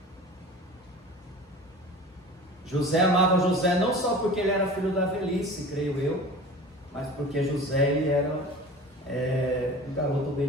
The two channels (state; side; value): normal; both; correlation 0.38